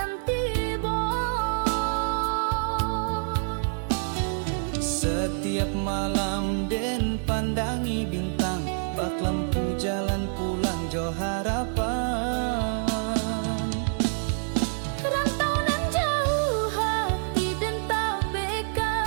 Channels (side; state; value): left; silent; 60 dB below the other